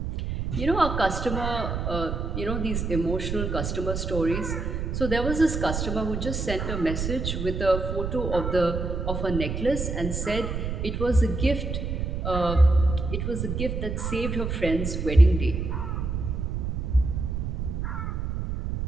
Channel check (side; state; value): right; noise; rumble, 3 dB below the sound